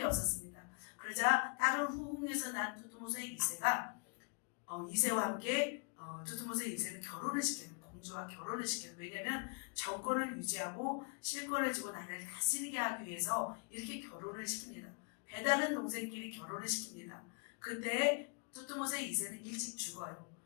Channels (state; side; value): quieter; right; 36.8 dB